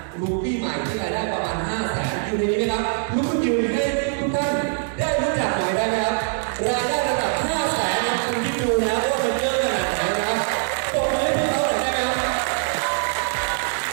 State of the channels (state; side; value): silent; left; digital silence